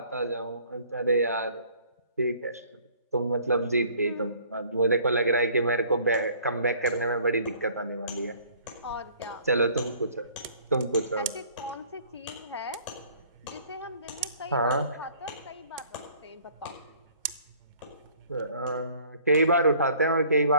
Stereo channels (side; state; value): both; inverted; correlation -0.55